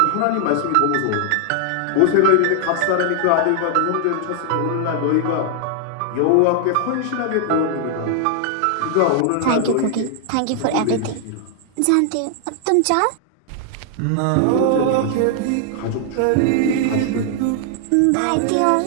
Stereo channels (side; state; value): both; different; correlation 0.00